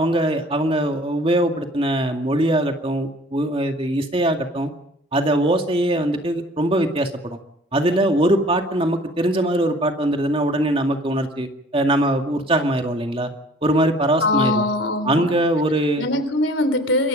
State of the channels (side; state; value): both; normal; correlation 0.51